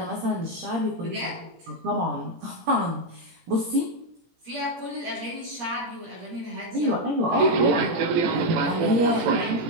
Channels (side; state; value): left; late; 17 ms